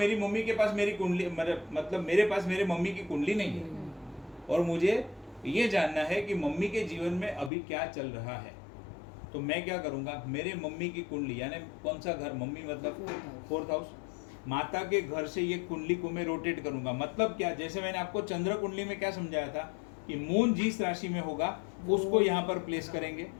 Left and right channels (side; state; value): right; drops out; at 7.5 s